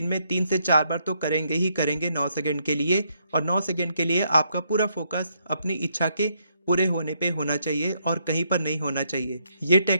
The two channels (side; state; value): both; inverted; correlation -0.75